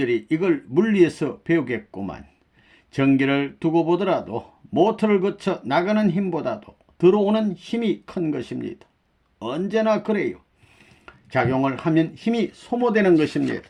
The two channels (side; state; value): both; identical; correlation 1.00